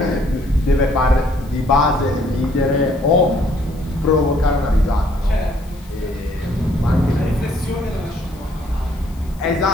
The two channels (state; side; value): noise; left; hiss, 26 dB below the sound